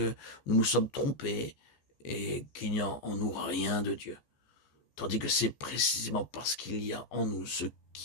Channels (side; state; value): right; late; 14 ms